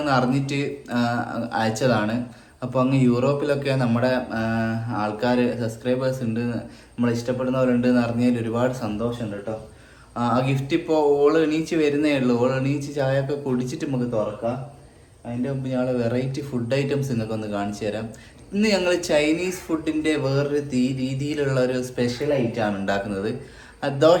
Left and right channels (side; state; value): both; identical; correlation 1.00